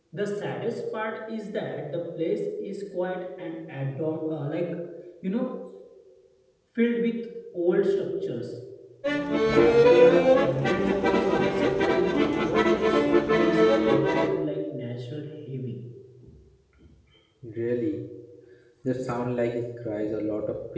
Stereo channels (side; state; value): both; identical; correlation 1.00